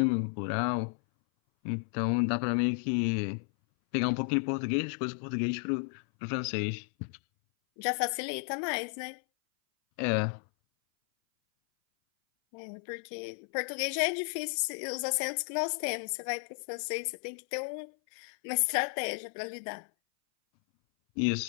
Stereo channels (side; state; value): right; silent; 56 dB below the other